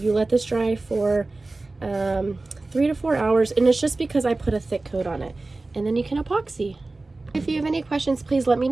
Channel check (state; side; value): quieter; left; 3.2 dB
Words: you let this dry for 3 to 4 hours, and it's just because I put a thick coat on it, and then you can epoxy. If you have any questions, please let me